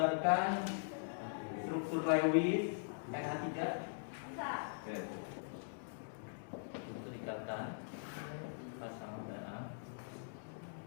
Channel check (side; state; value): right; silent; digital silence